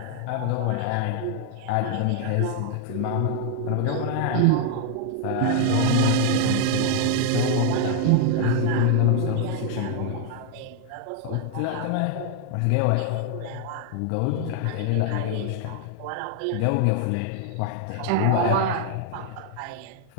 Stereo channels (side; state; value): both; different; correlation 0.00